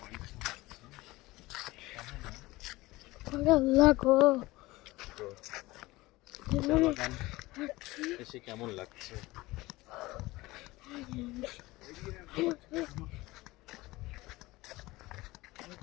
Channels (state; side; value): quieter; right; 19.9 dB